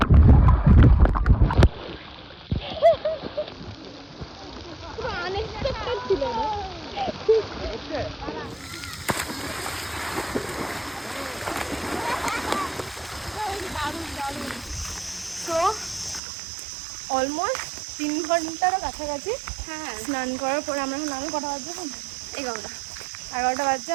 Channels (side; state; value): left; drops out; at 16.2 s